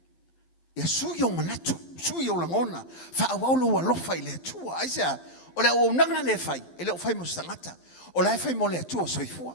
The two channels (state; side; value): late; right; 12 ms